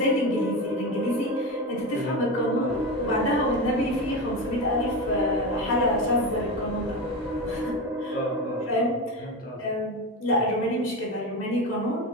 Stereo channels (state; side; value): normal; both; correlation 0.21